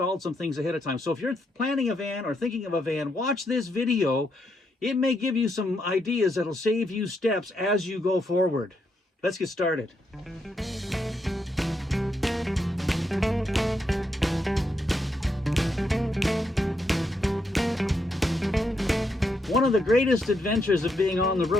some things ahead of time. So if you're planning a van or thinking of a van, watch this video. It may give you some ideas that'll save you steps as you go forward. Let's get started. One of the greatest adventures of being on the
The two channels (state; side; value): normal; both; correlation 0.79